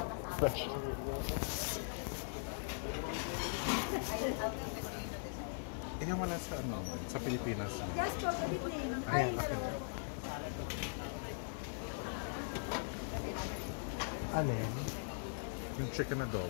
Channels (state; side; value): silent; right; 51 dB below the other